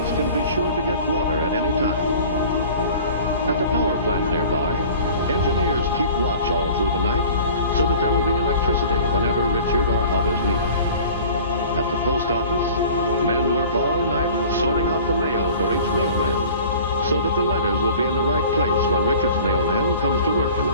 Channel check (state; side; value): inverted; both; correlation -0.44